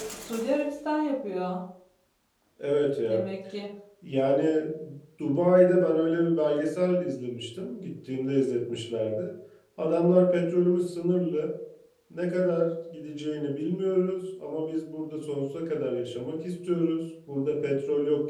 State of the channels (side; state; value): both; identical; correlation 1.00